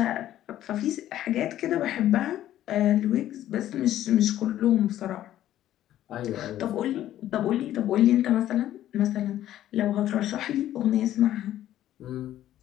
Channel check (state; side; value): quieter; right; 12.7 dB